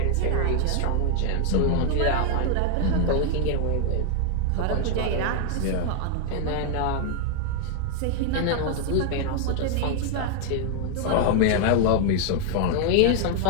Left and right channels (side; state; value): both; different; correlation 0.00